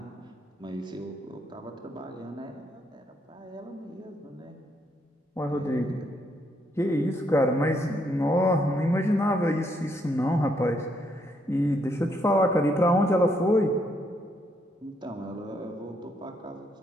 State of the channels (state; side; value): normal; both; correlation 0.74